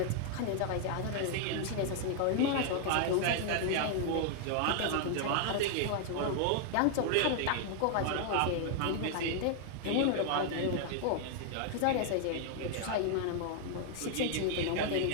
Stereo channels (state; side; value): different; both; correlation 0.00